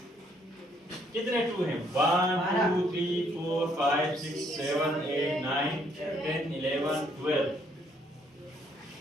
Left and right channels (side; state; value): both; normal; correlation 0.68